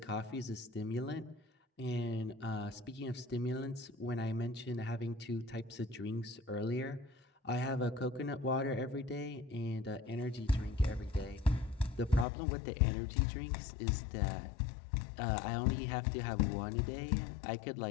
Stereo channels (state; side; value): drops out; right; at 12.2 s